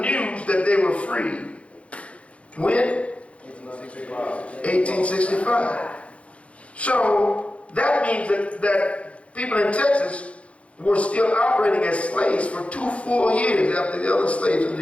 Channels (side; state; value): right; late; 0.063 ms